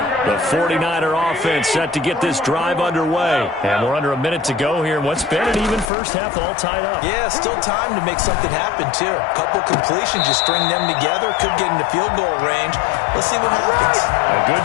The 49er offense set to get this drive underway. And we're under a minute to go here in what's been an even first half all tied up. Yeah, still time to make something happen, too. A couple completions, just string them together. Could get into field goal range. Let's see what happens. A good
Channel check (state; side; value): drops out; right; at 5.9 s